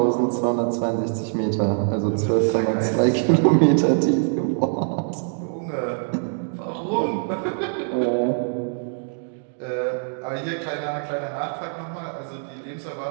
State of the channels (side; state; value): left; silent; 63 dB below the other